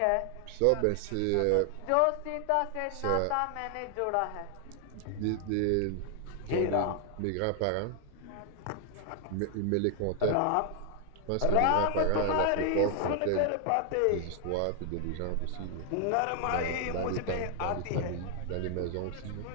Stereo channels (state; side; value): different; both; correlation 0.00